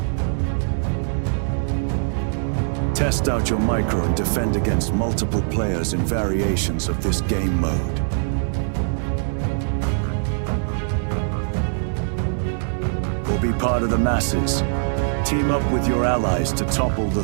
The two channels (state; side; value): silent; left; digital silence